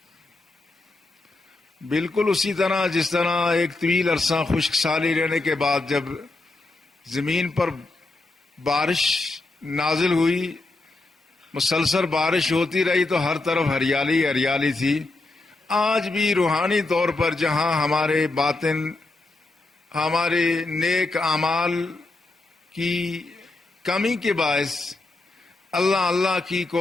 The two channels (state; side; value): quieter; right; 3.1 dB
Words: بالکل اسی طرح جس طرح ایک طویل عرصہ خشک سالی رہنے کے بعد جب زمین پر بارش نازل ہوئی، مسلسل بارش ہوتی رہی تو ہر طرف ہریالی ہریالی تھی. آج بھی روحانی طور پر جہاں ہمارے باطن، ہمارے نیک اعمال کی کمی کے باعث، اللہ کی